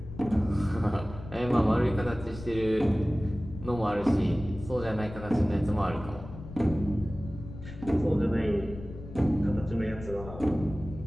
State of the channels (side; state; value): left; noise; rumble, 13 dB below the sound